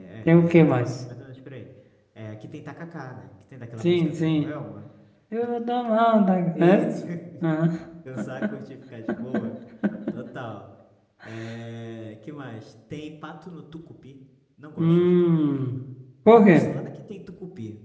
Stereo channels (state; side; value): identical; both; correlation 1.00